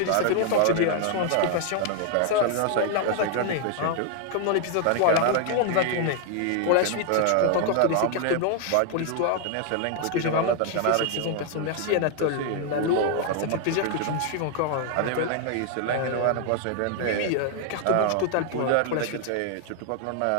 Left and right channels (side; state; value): both; different; correlation 0.00